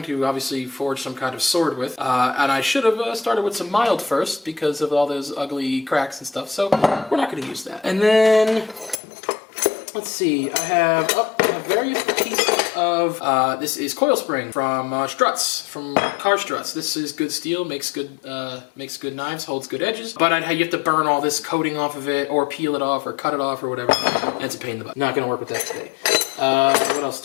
to obviously forge some kind of sword with. And I should have started with some mild first because of all those ugly cracks and stuff. So we're not going to use that. And then, let's see, I have various pieces of, this is coil spring from struts, from car struts. This is good steel, makes good knives, holds good edges. But you have to burn all this coating off of it, or peel it off, or cut it off, or whatever. And it's a pain in the butt. Not gonna work with that today. What else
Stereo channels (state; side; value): drops out; right; at 9.0 s